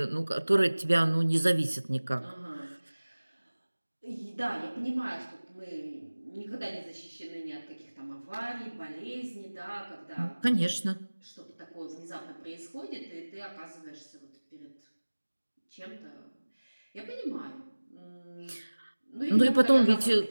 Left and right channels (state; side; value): inverted; both; correlation -1.00